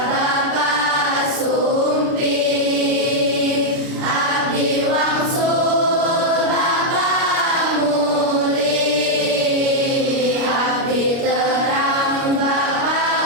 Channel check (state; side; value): late; left; 29 ms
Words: Bapak Sumpi, abdi wangsul Bapak Muli, abdi terang